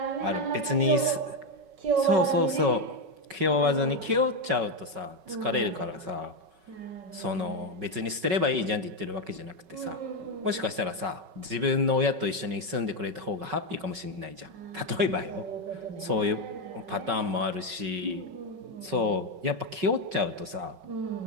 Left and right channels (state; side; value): late; left; 5.3 ms